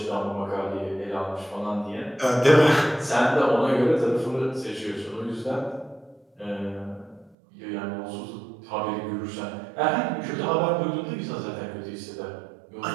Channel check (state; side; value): drops out; left; at 7.4 s